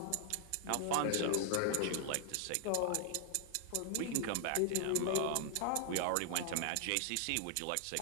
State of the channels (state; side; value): different; both; correlation 0.00